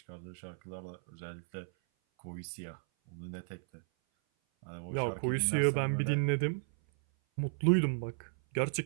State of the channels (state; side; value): silent; left; 55 dB below the other